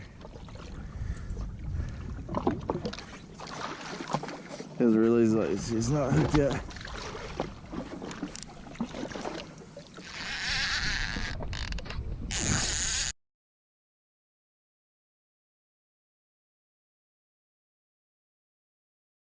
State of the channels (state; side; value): identical; both; correlation 1.00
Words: Doesn't realize he's not hooked yet.